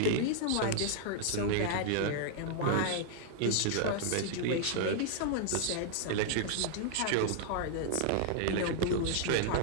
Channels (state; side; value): different; both; correlation -0.01